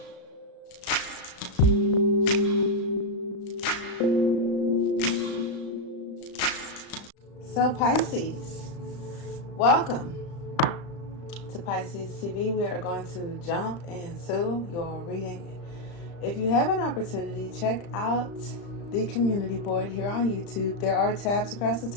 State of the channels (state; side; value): late; right; 35 ms